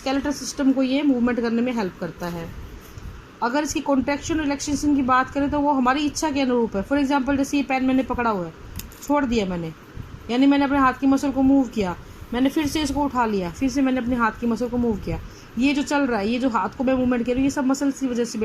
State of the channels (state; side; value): identical; both; correlation 1.00